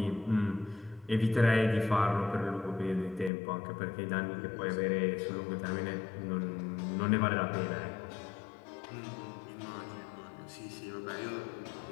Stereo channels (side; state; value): right; drops out; at 3.3 s